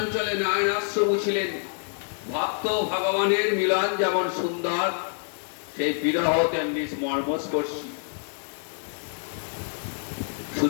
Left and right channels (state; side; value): silent; right; 60 dB below the other